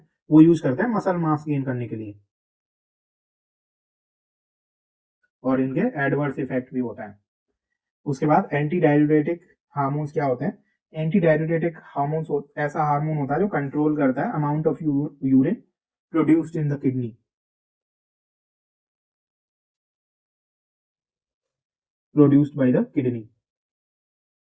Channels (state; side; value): identical; both; correlation 1.00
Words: वो यूज करते हैं मसल मास गेन करने के लिए, और इनके एडवर्स इफेक्ट भी होता है। उसके बाद एंटी डाययूरेटिक हार्मोन्स क्या होते हैं? एंटी डाययूरेटिक हार्मोन्स ऐसा हार्मोन होता है जो कंट्रोल करता है amount of urine produced in the kidney, produced by the kidney.